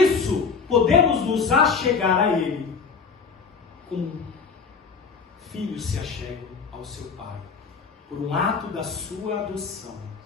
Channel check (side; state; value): right; quieter; 5.3 dB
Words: podemos nos achegar a Ele como filhos se achegam ao seu Pai, por um ato da sua adoção.